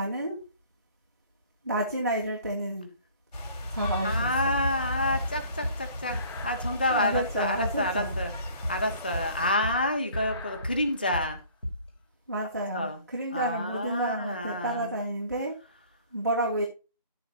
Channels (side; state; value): both; inverted; correlation -0.52